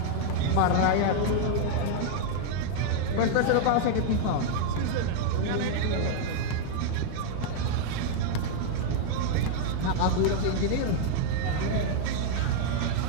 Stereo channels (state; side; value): different; both; correlation 0.00